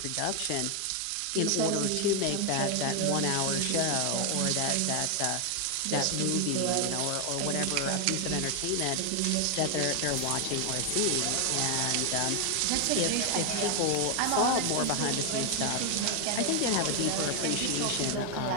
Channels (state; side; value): different; both; correlation 0.00